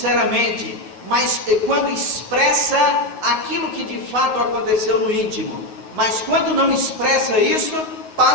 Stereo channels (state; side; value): late; right; 9.4 ms